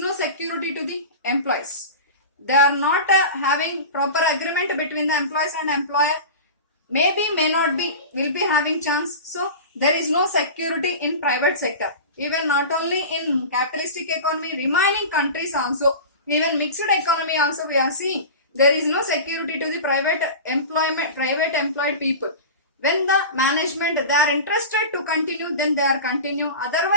security to the employees. They are not having proper agreement between the employees and employer. Maybe, may not be, will be having chance. So there is no security in private sector. Even not only in capitalistic economy, remaining countries also, even mixed economy also we are seeing. There is no security to the private employed people. When the management they are interested to continue, then they are continue.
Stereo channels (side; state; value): both; inverted; correlation -0.31